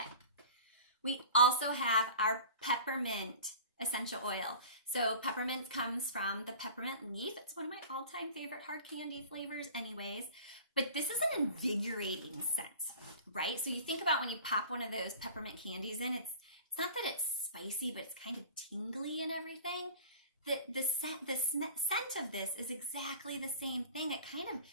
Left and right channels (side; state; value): both; inverted; correlation -0.37